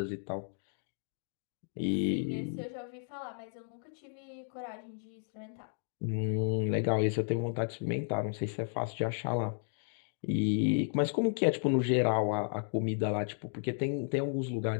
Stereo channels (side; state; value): right; silent; digital silence